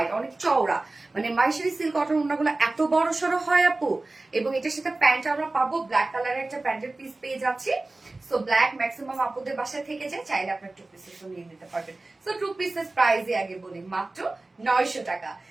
অনেক চওড়া। মানে মাইশারি সিল্ক কটন ওন্নাগুলো এত বড় সড়ো হয় আপু। এবং এটার সাথে প্যান্ট আমরা পাবো, ব্ল্যাক কালারের একটা প্যান্টের পিস পেয়ে যাচ্ছি। সো ব্ল্যাক ম্যাক্সিমাম আপুদের বাসায় থেকে যায়, চাইলে আপনার 2 পিসেস নিয়ে নিতে পারবেন। সো 2 পিসেস প্রাইসে আগে বলি মাত্র 900 টাকা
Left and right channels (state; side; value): quieter; left; 3.1 dB